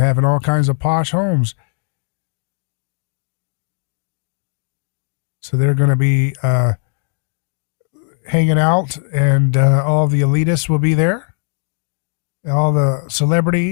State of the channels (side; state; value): right; silent; digital silence